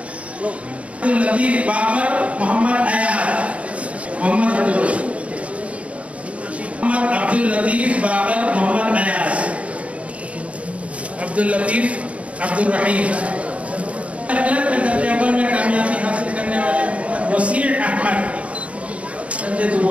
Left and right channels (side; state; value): left; late; 0.065 ms